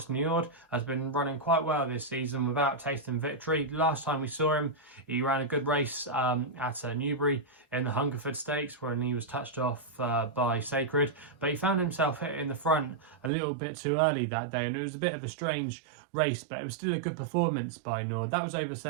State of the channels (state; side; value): drops out; left; at 13.3 s